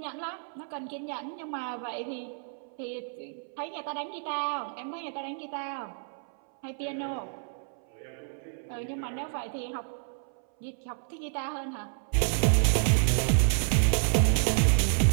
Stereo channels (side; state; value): left; silent; 58 dB below the other